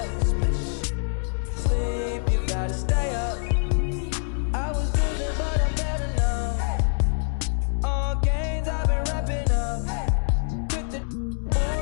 Sleep, you gotta stay up. I was losing, but I'm better now. All games I've been wrapping up. With the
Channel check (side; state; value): right; silent; 62 dB below the other